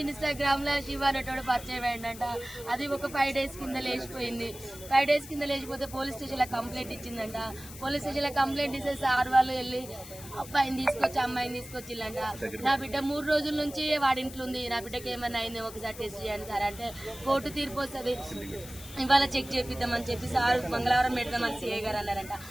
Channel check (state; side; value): noise; left; hiss, 15 dB below the sound